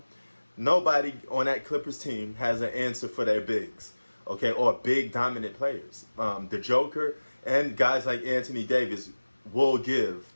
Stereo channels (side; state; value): both; inverted; correlation -1.00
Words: Nobody on that Clippers team has an answer for their bigs, okay, or big dominant players. The Joker and guys like Anthony Davis will give